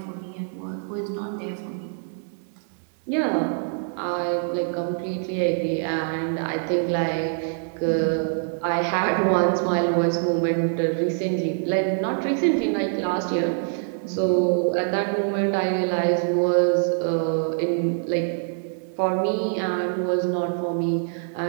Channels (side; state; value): left; silent; digital silence